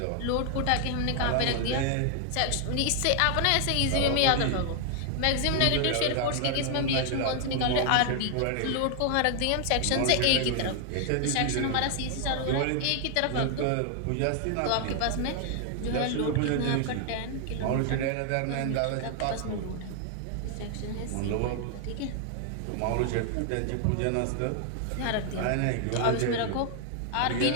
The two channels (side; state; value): both; different; correlation 0.00